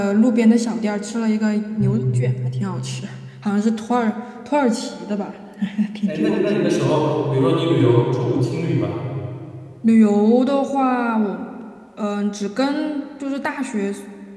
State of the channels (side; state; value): both; identical; correlation 1.00